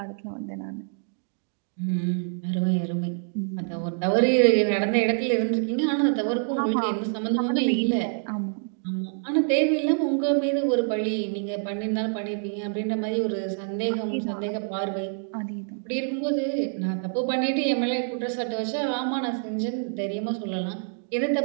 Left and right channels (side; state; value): left; silent; 61 dB below the other